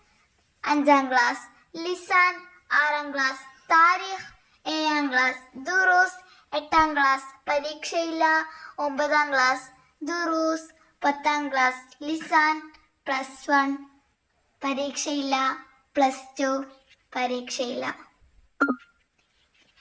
5-ാം ക്ലാസ് ലിസാൻ, 6-ാം ക്ലാസ് താരീഖ്, 7-ാം ക്ലാസ് ദുറൂസ്, 8-ാം ക്ലാസ് പരീക്ഷയില്ല, 9-ാം ക്ലാസ് ദുറൂസ്, 10-ാം ക്ലാസ് ലിസാൻ, +1 പരീക്ഷയില്ല, +2 പരീക്ഷയില്ല.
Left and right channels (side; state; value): both; identical; correlation 1.00